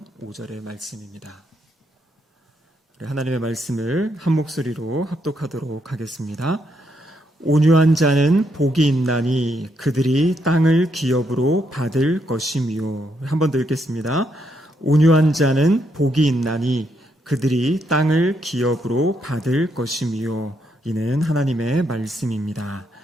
5절의 말씀입니다. 하나님의 말씀을 한 목소리로 합독하도록 하겠습니다. 온유한 자는 복이 있나니 그들이 땅을 기업으로 받을 것이며. 한 번 더 읽겠습니다. 온유한 자는 복이 있나니 그들이 땅을 기업으로 받을 것이며. 이는 하나님의 말씀입니다.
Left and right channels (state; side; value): normal; both; correlation 0.77